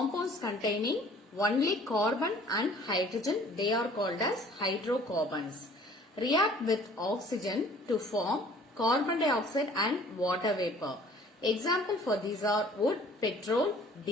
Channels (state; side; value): normal; both; correlation 0.53